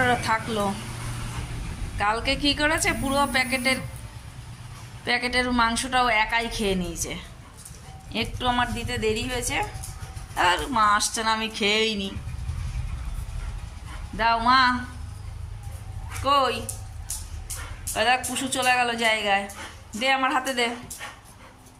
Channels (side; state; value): both; identical; correlation 1.00